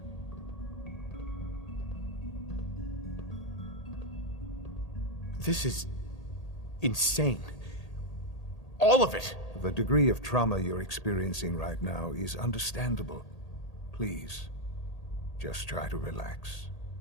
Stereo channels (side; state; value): right; late; 1.8 ms